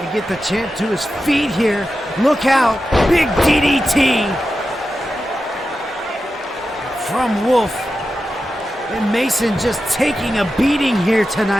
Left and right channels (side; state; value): both; normal; correlation 0.91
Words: to get the champ to his feet here. Look out. Big DDT from Wolf. And Mason just taking a beating here